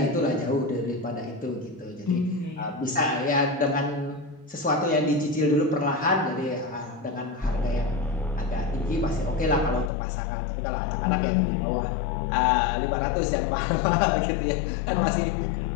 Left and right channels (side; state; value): right; drops out; at 9.9 s